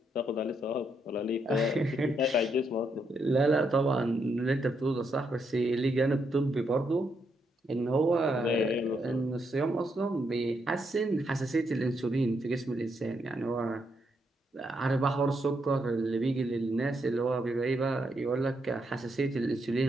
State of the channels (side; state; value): both; normal; correlation 0.78